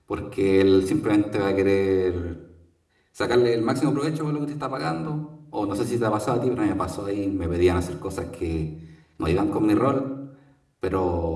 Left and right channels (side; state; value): both; identical; correlation 1.00